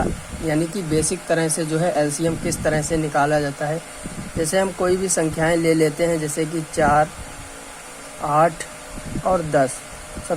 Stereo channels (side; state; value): both; identical; correlation 1.00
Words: यानी कि बेसिक तरह से जो है एलसीएम किस तरह से निकाला जाता है। जैसे हम कोई भी संख्याएं ले लेते हैं, जैसे कि 4, 8 और 10।